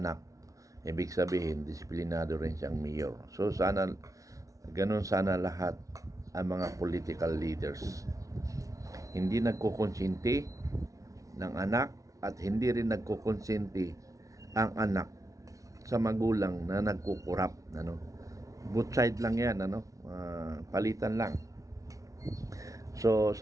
ibig sabihin, disiplinado rin siyang mayor. So, ganun sana lahat ang mga political leaders. Hindi nagkukonsinti ng anak at hindi rin nagkukonsinti ang anak sa magulang na nagkukurap, ano. Both side lang yan, ano. Palitan lang. So,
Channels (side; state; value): left; late; 0.16 ms